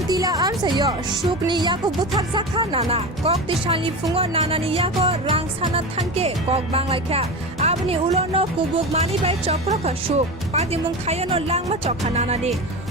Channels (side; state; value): both; normal; correlation 0.25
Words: Tila Amsayo Shukni Yako Buthak Zakha Nana Kok Tishanli Fungo Nana ni Yako Rang Sana Thanke Kok Banglaika Abni Ulono Kubuk Mani Bai Chokroka Shuk Padimung Khayano Langma Chokha Nana de